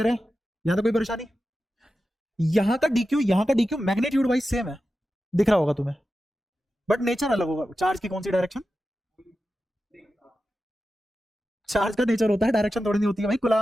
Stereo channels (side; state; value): both; normal; correlation 0.92